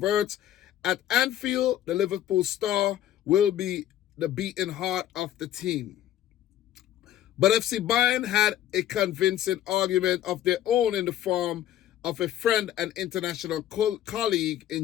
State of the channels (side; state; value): right; quieter; 12.1 dB